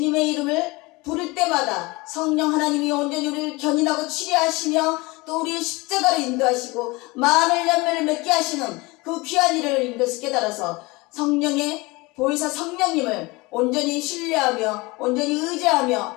이름을 부를 때마다 성령 하나님이 온전히 우리를 견인하고 치료하시며 또 우리의 십자가를 인도하시고 많은 열매를 맺게 하시는 그 귀한 일을 인도해서 깨달아서 성령의 보혜사 성령님을 온전히 신뢰하며 온전히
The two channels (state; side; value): quieter; right; 23.8 dB